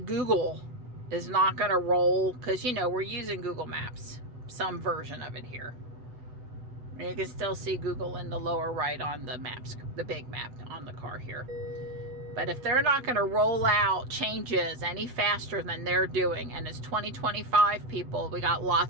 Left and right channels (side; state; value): left; late; 8.0 ms